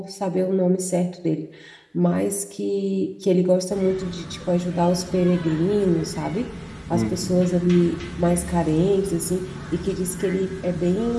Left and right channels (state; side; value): identical; both; correlation 1.00